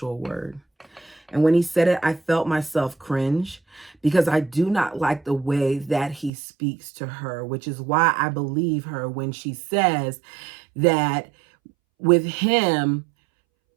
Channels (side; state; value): left; drops out; at 6.3 s